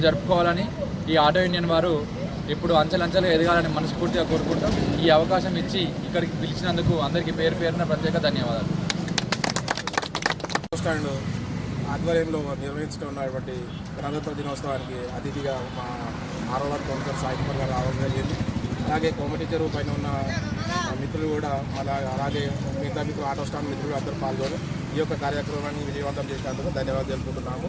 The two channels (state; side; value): identical; both; correlation 1.00